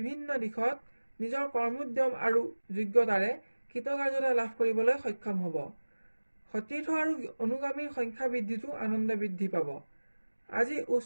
দিশত নিজৰ কৰ্মোদ্যম আৰু যোগ্যতাৰে কৃতকাৰ্যতা লাভ কৰিবলৈ সক্ষম হ'ব। সতীৰ্থ আৰু অনুগামীৰ সংখ্যা বৃদ্ধিতো আনন্দ বৃদ্ধি পাব। আজি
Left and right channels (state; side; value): inverted; both; correlation -1.00